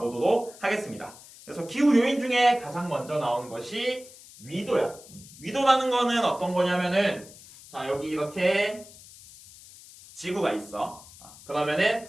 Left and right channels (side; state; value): left; noise; hiss, 20 dB below the sound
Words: 보도록 하겠습니다. 그래서 기후 요인 중에 가장 먼저 나오는 것이 위도야. 위도라는 거는 어떤 거냐면은, 자, 여기 이렇게 지구가 있어. 그러면은